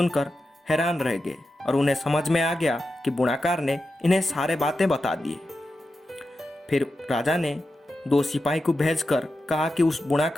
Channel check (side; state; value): both; normal; correlation 0.90